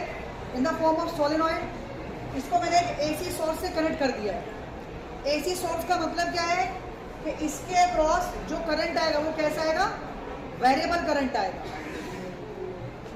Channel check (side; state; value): both; identical; correlation 1.00